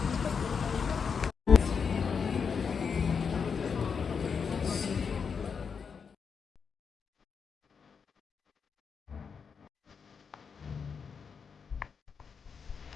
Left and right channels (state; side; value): quieter; right; 6.1 dB